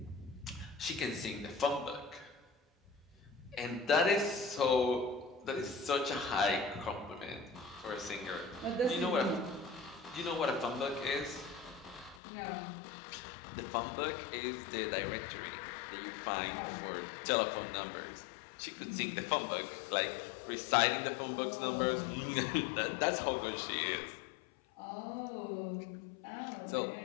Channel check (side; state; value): right; drops out; at 12.2 s